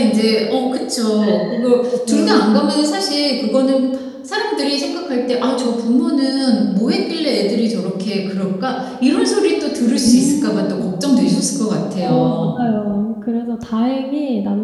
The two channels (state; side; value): identical; both; correlation 1.00